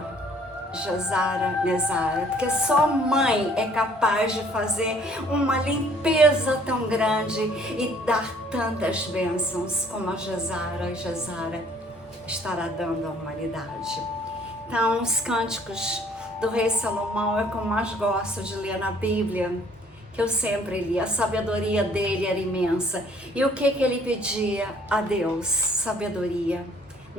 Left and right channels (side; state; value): both; normal; correlation 0.59